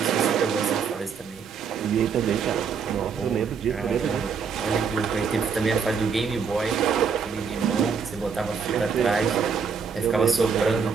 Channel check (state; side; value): quieter; left; 6.1 dB